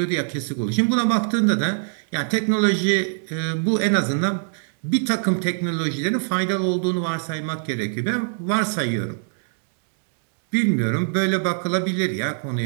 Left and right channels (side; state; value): left; silent; digital silence